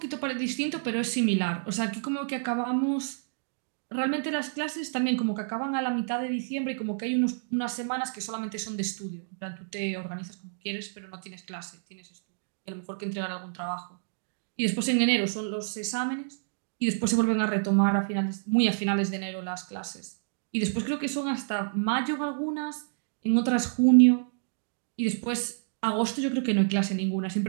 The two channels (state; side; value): silent; left; digital silence